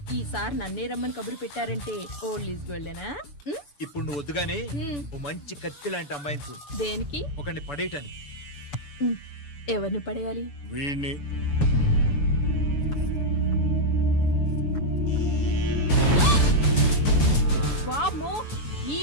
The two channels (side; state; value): right; late; 6.9 ms